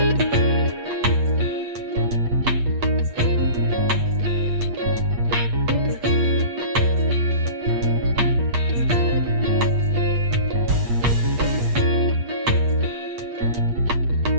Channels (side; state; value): left; late; 8.4 ms